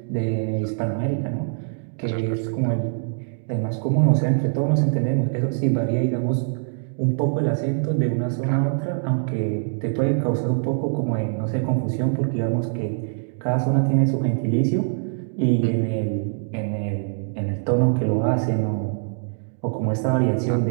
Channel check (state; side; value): silent; left; digital silence